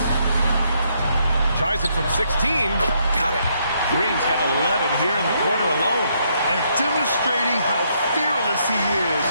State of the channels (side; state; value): both; inverted; correlation -0.73